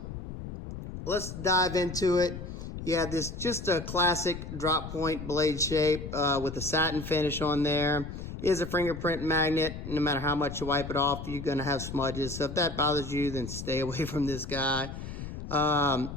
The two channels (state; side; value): noise; left; rumble, 9 dB below the sound